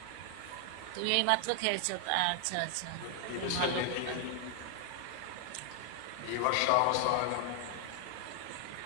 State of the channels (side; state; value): both; different; correlation 0.00